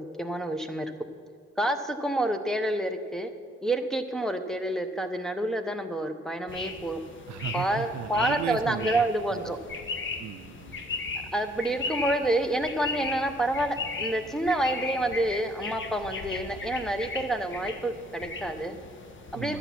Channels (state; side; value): normal; both; correlation 0.65